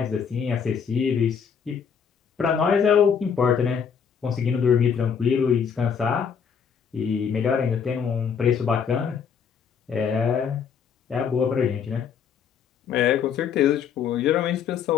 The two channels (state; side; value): quieter; right; 7.0 dB